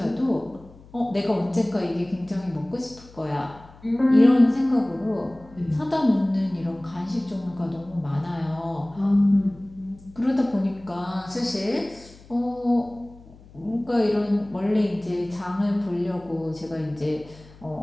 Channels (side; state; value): left; noise; hum, 22 dB below the sound